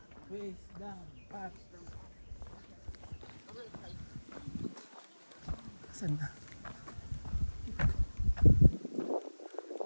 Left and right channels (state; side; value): inverted; both; correlation -1.00